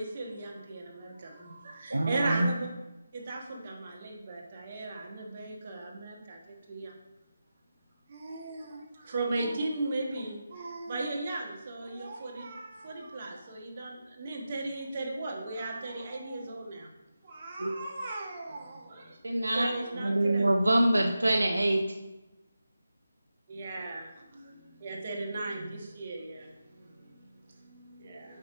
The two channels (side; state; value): both; inverted; correlation -0.91